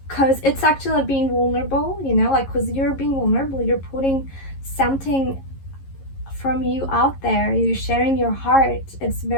because it's actually like being vulnerable, you know, like because you're being vulnerable, you're putting something from you out there, you're sharing your heart. It's a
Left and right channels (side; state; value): right; late; 11 ms